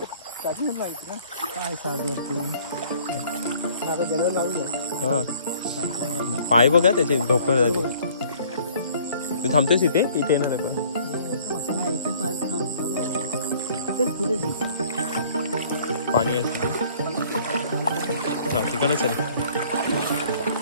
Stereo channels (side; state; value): both; inverted; correlation -0.55